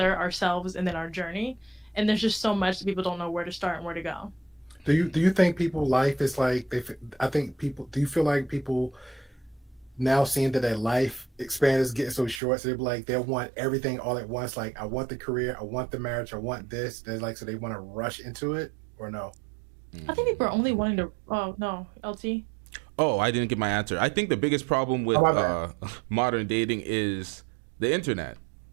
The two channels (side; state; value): left; drops out; at 12.4 s